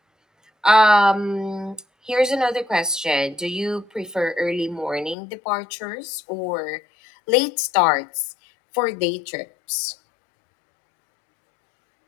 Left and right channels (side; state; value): right; drops out; at 5.2 s